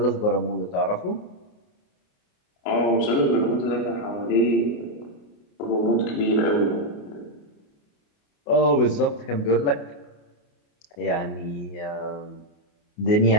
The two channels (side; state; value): right; late; 28 ms